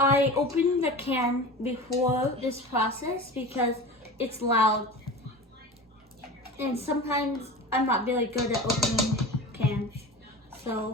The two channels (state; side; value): normal; both; correlation 0.33